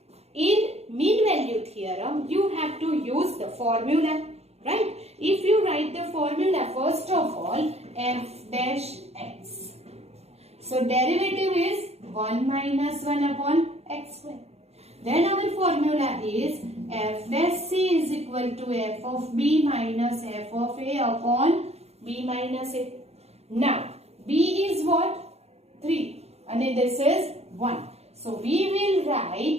in mean value theorem you have to use the formula, right? If you write the formula first of all f dash x. So derivative is 1 minus 1 upon x square. Then our formula is f dash c is equal to f of b minus f of a upon b minus a. Now b is what? 3 and this is 1. So we will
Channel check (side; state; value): left; late; 0.30 ms